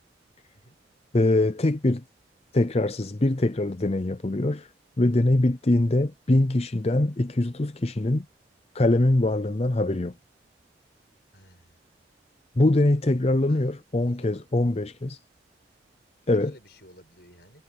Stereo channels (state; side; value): normal; both; correlation 0.81